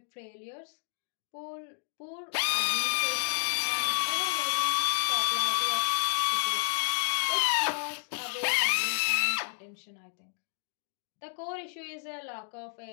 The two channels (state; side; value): silent; right; 57 dB below the other